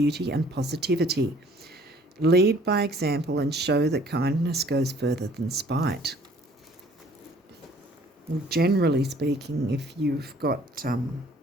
and positivity. Lead by example and show that kindness goes further than spite. Well, generally speaking, if you've got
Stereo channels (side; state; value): both; normal; correlation 0.56